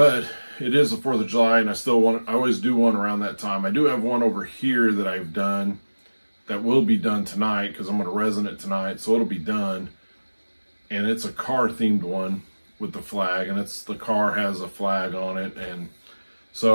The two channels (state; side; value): inverted; both; correlation -1.00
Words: it is the 4th of July, and I always do one around that time. I do have one over here that I've done that will be done tonight because I'm going to resin it tonight, so it'll be done. And it's a car themed one with the flag, and the car has a flag on it, and